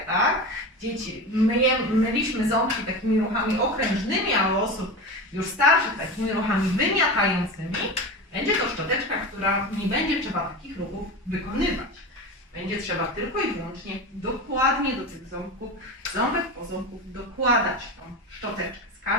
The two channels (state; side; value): normal; both; correlation 0.26